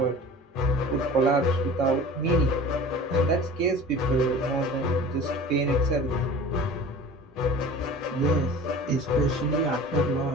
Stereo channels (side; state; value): both; normal; correlation 0.40